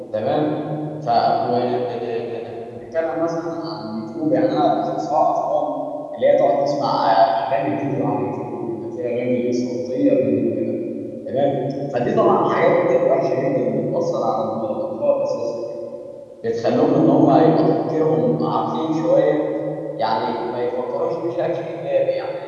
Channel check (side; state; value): both; identical; correlation 1.00